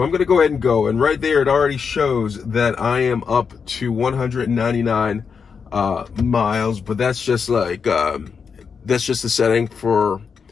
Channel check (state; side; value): quieter; right; 6.0 dB